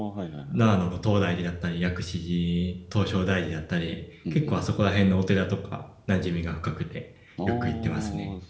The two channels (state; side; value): identical; both; correlation 1.00